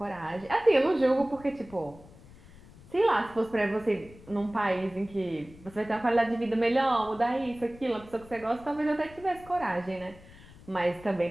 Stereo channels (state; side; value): noise; left; rumble, 21 dB below the sound